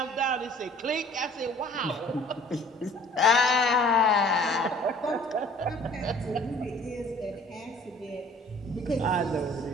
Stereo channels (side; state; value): both; normal; correlation 0.52